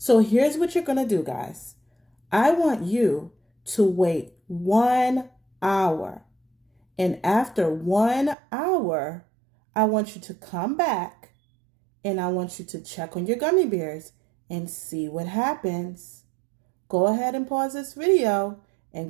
here's what you're going to do, guys. I want you to wait 1 hour. And after 1 hour, I want you to come back and I want you to check on your gummy bears and see what happens. Go ahead and pause this video and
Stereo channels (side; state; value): left; drops out; at 8.3 s